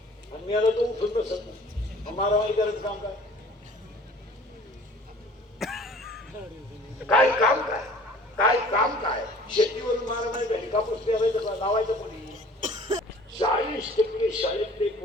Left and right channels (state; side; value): normal; both; correlation 0.49